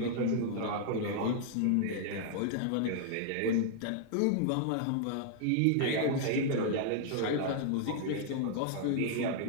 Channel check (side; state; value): both; different; correlation -0.01